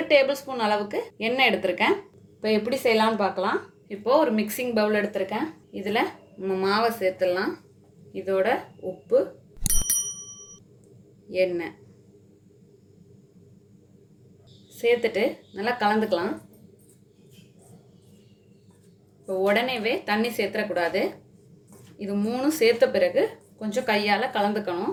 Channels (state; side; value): identical; both; correlation 1.00